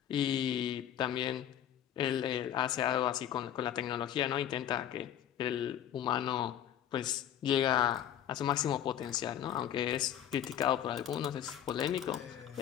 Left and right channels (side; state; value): right; quieter; 10.6 dB